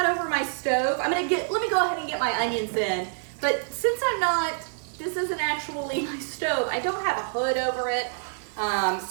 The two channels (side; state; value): left; silent; digital silence